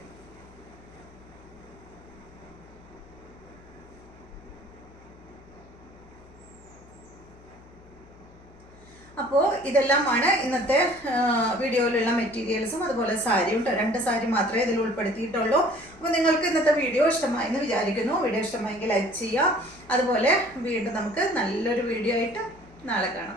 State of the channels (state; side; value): noise; left; hum, 23 dB below the sound